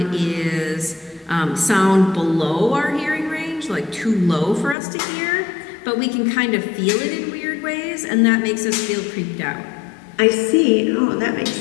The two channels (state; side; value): drops out; right; at 4.8 s